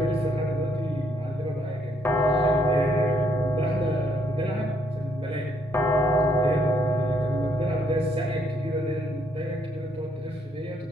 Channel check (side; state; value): both; normal; correlation 0.71